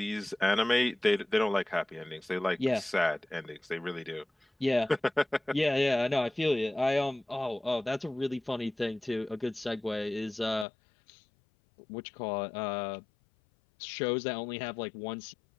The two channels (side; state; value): right; drops out; at 10.7 s